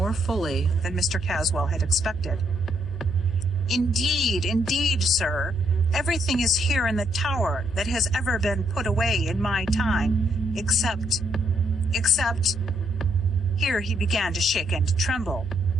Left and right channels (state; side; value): noise; left; hum, 16 dB below the sound